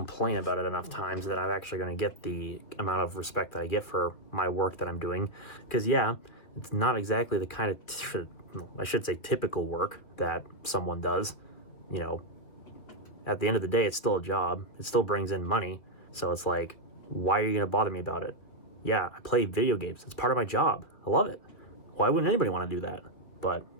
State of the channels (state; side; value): late; right; 2.7 ms